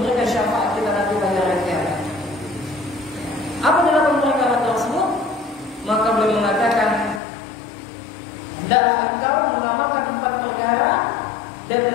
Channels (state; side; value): drops out; right; at 7.2 s